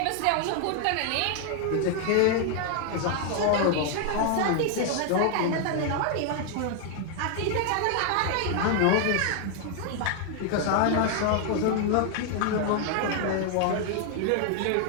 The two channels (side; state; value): both; different; correlation 0.00